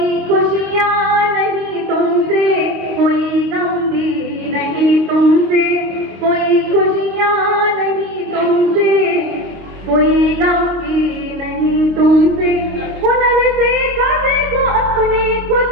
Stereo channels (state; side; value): late; left; 26 ms